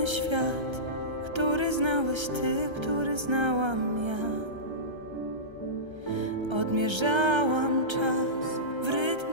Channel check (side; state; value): left; late; 1.3 ms